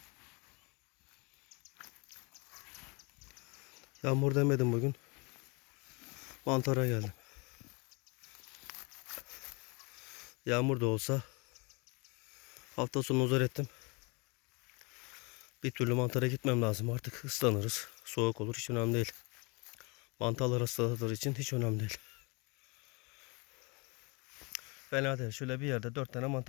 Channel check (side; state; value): right; quieter; 29.7 dB